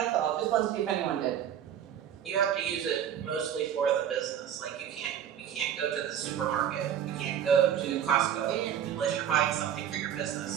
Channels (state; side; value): quieter; left; 9.6 dB